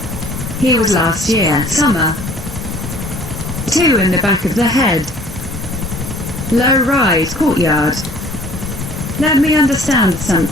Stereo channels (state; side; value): normal; both; correlation 0.53